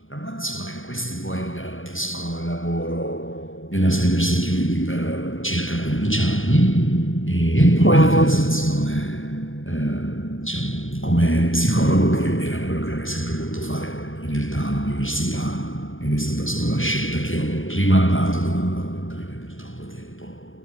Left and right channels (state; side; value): late; right; 0.58 ms